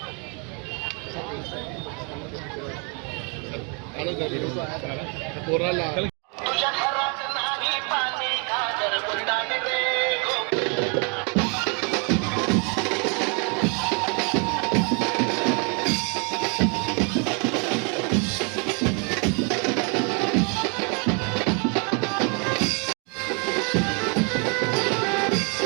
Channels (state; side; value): quieter; left; 35.7 dB